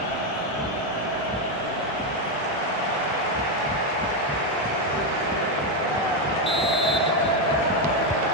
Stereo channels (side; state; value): both; normal; correlation 0.06